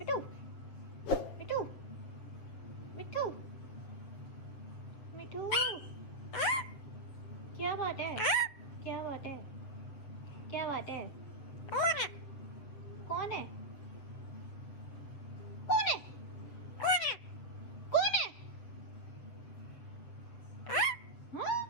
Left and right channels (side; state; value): right; late; 7.8 ms